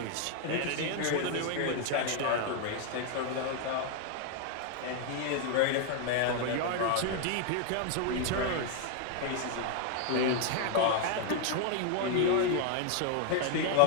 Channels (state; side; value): different; both; correlation 0.00